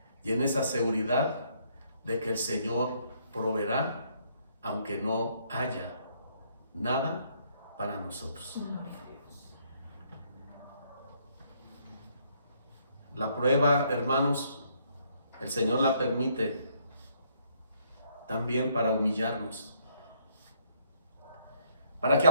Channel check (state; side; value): inverted; both; correlation -0.68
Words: y en esa seguridad de que el Señor proveerá, aunque no haya nada para nosotros. La prueba, hermanos, el Señor la permite también para humillarnos, para que